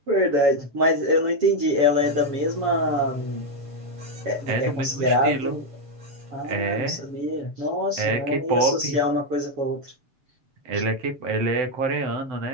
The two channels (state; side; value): late; left; 7.2 ms